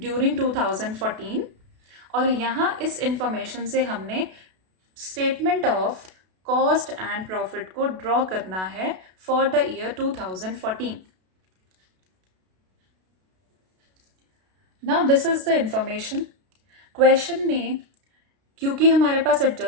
2014। और यहाँ इस इंफॉर्मेशन से हमने statement of cost and profit को ड्रॉ करना है for the year 2014। Now this is the information. Question में क्योंकि हमारे पास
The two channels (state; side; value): late; left; 32 ms